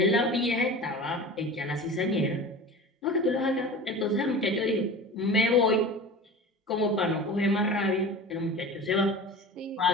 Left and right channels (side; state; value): both; normal; correlation 0.35